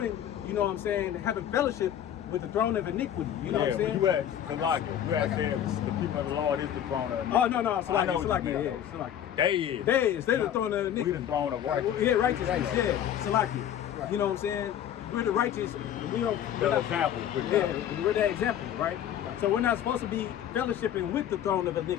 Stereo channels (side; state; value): right; quieter; 10.3 dB